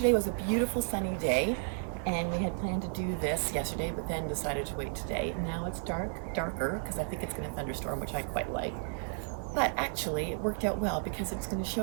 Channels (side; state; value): left; silent; 56 dB below the other